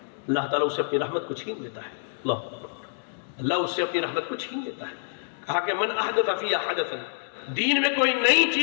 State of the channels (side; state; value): right; silent; digital silence